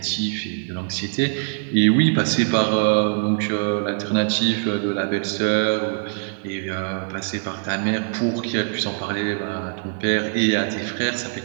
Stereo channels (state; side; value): silent; left; 64 dB below the other